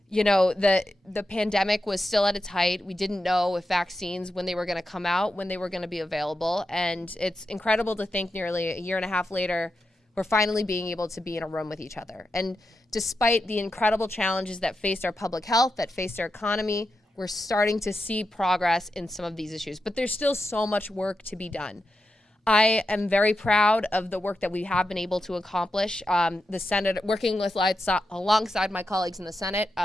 you know, the pandemic was still at its height. We didn't know if vaccines, when they were going to come out, when they were going to be available. And it's incredible to think nearly a year and a half later, we're finally being able to be in a room with each other. And despite the incredible challenges that faced our public health, that faced our economy, we're starting to see progress in some of these issues. But there's still so much work to be done. I am very proud of the work that we have been able to accomplish. The Senate, working with alongside my colleagues in the Senate,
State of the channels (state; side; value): normal; both; correlation 0.88